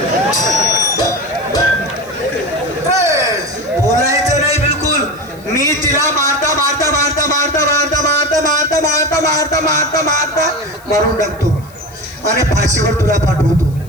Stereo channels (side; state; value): left; noise; hiss, 26 dB below the sound